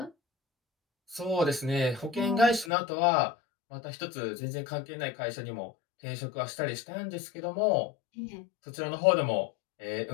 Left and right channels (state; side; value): drops out; right; at 2.7 s